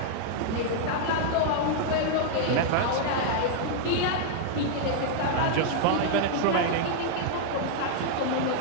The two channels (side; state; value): both; different; correlation -0.01